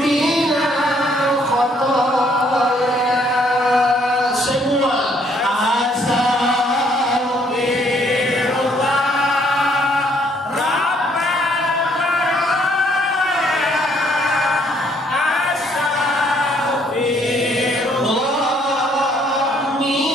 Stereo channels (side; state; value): both; normal; correlation 0.66